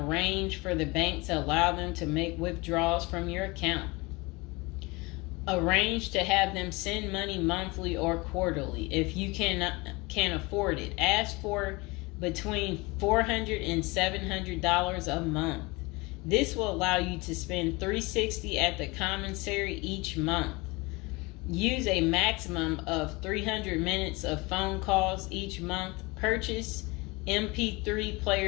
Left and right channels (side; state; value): right; quieter; 24.8 dB